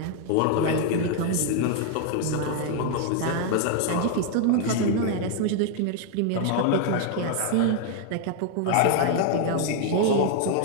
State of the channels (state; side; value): different; both; correlation 0.00